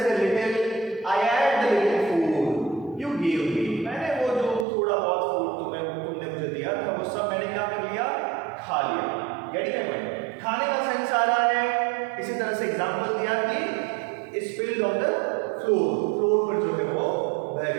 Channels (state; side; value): drops out; left; at 4.7 s